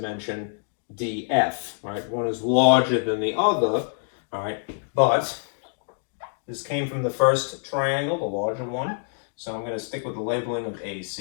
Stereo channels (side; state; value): right; silent; digital silence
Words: DF, right? One is larger than the other, all right, but this came from the first triangle, the larger one, so I'm going to stick with the labeling of